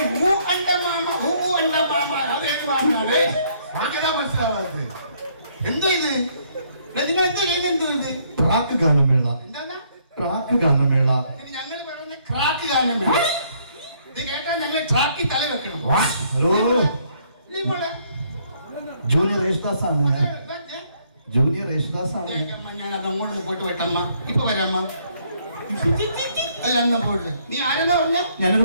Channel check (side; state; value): both; inverted; correlation -0.67